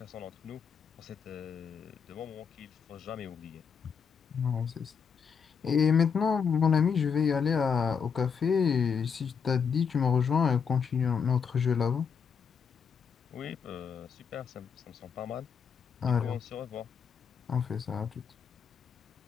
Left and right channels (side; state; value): right; quieter; 6.5 dB